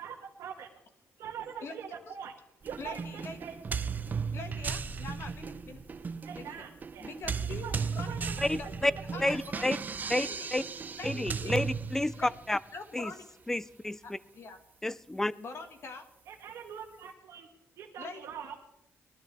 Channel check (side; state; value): both; normal; correlation 0.79